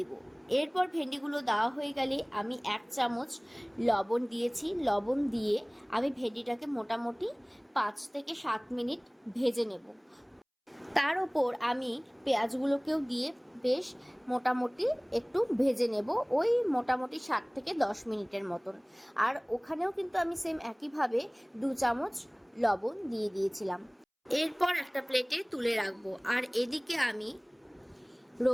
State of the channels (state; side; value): identical; both; correlation 1.00